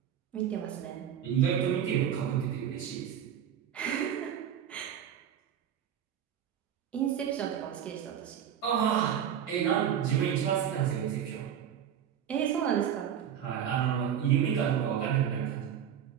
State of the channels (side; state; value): left; quieter; 9.3 dB